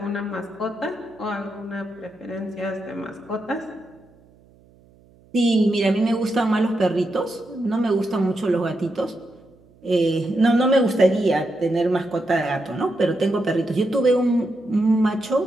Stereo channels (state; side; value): noise; right; hum, 29 dB below the sound